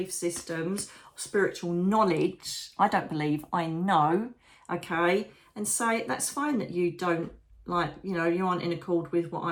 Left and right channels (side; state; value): both; identical; correlation 1.00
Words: systems, spiritual knowledge. I don't believe, I know. Okay. And say, that's fine that you don't like, you know, you aren't in accord with what